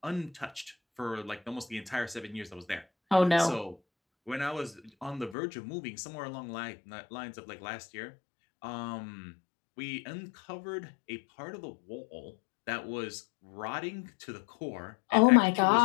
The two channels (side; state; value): right; drops out; at 5.4 s